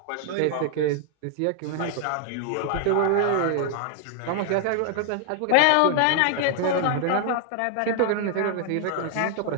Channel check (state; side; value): different; both; correlation 0.00